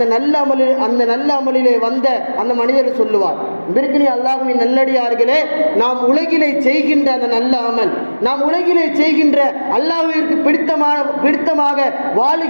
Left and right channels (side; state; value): both; inverted; correlation -1.00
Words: நல்ல அமலிலே வந்த அந்த மனிதர் சொல்லுவார். பிறகு அல்லாஹ்வின் நல்லடியார்களே, நாம் உலகிலே செய்கின்ற அந்த நல்ல அமல், நாம் உலகிலே செய்கின்ற அல்லாஹ்விற்கு பிடித்தமாக